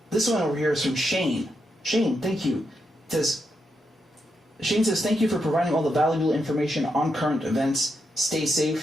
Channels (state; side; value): normal; both; correlation 0.83